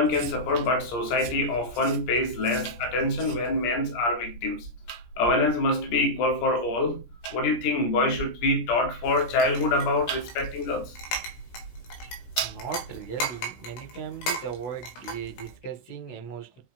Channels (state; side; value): late; right; 17 ms